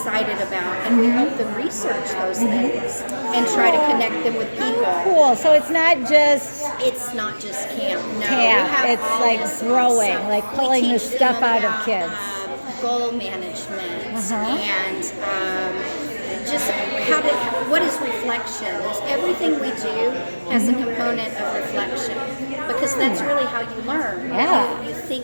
about, and we help them research those things and try to connect them with people. Cool. So it's not just camp. No, camp. We have It's all like this growing, stuff. like We pulling the teach them stuff out of about, kids. Goal management and just what is reflection? Everything we do has a component of reflection, because that's really how you learn. Yeah. You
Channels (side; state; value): both; inverted; correlation -1.00